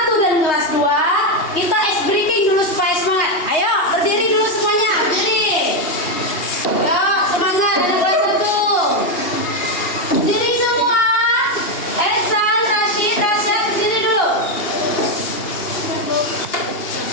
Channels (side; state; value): right; late; 2.8 ms